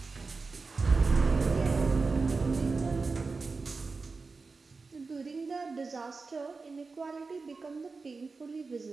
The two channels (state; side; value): quieter; left; 4.2 dB